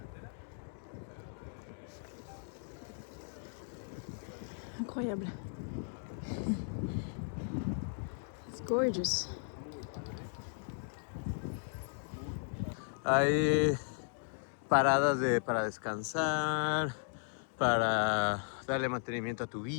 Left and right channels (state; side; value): silent; right; digital silence